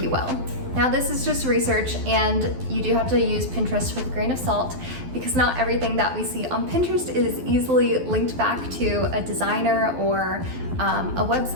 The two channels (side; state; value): left; late; 12 ms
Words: you will. Now this is just research, and you do have to use Pinterest with a grain of salt because not everything that we see on Pinterest is easily linked back to a designer or a